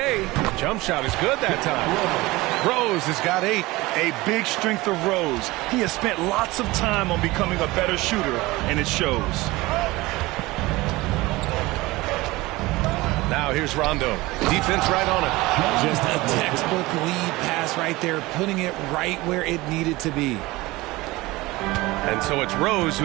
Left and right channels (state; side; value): quieter; left; 20.4 dB